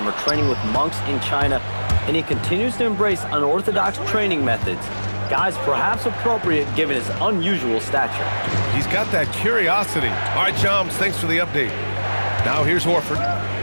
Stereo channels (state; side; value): inverted; both; correlation -1.00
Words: training with monks in China, and he continues to embrace unorthodox training methods. Guys, perhaps appropriate given his unusual stature. He's got that curiosity. All right, Shams, thanks for the update. Now here's Horford.